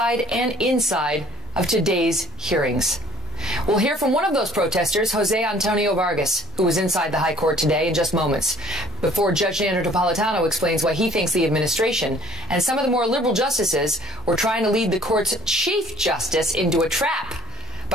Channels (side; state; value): both; normal; correlation 0.55